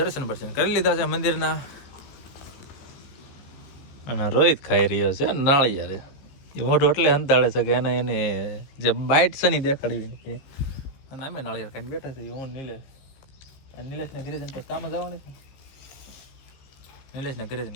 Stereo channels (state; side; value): late; right; 15 ms